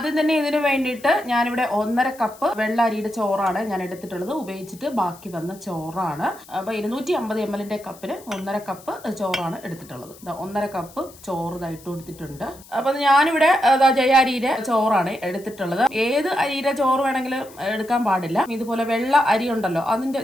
തന്നെ ഇതിനു വേണ്ടിയിട്ട് ഞാനിവിടെ 1.5 കപ്പ് വെള്ള അരിയുടെ ചോറാണ് ഞാൻ എടുത്തിട്ടുള്ളത്. ഉപയോഗിച്ചിട്ട് ബാക്കി വന്ന ചോറാണ്. അപ്പൊ 250 ml കപ്പിന് 1.5 കപ്പ് ചോറാണ് എടുത്തിട്ടുള്ളത്. 1.5 കപ്പ് ചോറ് ഇട്ട് കൊടുത്തിട്ടുണ്ട്. അപ്പൊ ഞാനിവിടെ ജയ അരിയുടെ ചോറാണ് എടുത്തിട്ടുള്ളത്. ഏത് അരിയുടെ ചോറ് വേണമെങ്കിലും എടുക്കാൻ പാടില്ല. ഇതുപോലെ വെള്ള അരി ഉണ്ടല്ലോ, അതിന്റെ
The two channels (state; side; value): noise; left; hiss, 22 dB below the sound